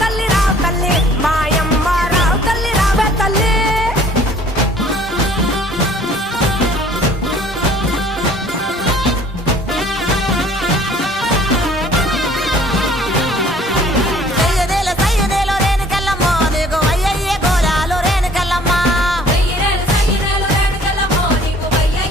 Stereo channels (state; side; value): normal; both; correlation 0.54